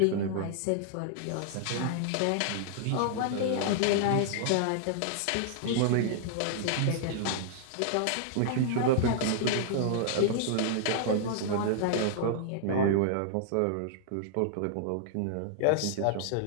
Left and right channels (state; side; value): different; both; correlation -0.01